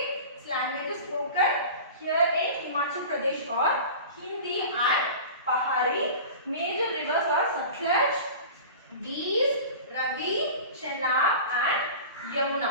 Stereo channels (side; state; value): both; inverted; correlation -0.36